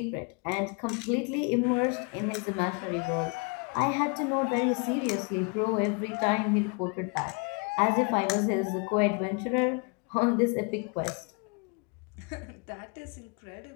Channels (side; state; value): right; quieter; 33.0 dB